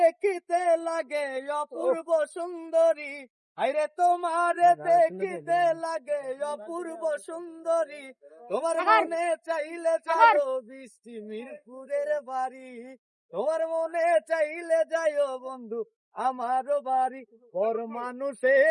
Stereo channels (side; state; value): both; identical; correlation 1.00